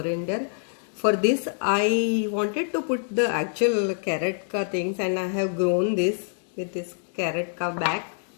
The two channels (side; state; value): right; silent; 61 dB below the other